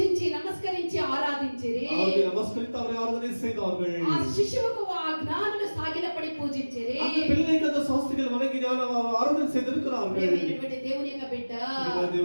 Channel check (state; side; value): inverted; both; correlation -1.00